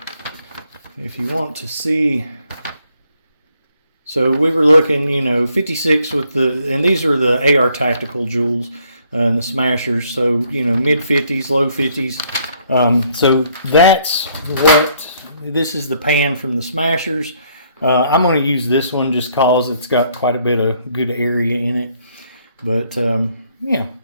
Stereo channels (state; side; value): inverted; both; correlation -0.67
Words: if you want to see... So we were looking, 56 with the, and these are the AR Tactical Joules and the Smashers. So, mid 50s, low 50s. So that's what, this is the pan from the Smashers. I'm going to use this one just cause it's got quite a bit of good area in it. But, yeah.